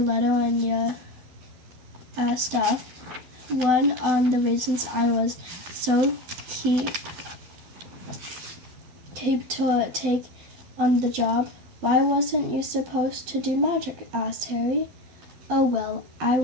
and your stuff. One on the reasons I was so keen to take on the job. Why wasn't you supposed to do magic? Asked Harry. Oh well, I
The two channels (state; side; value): late; left; 11 ms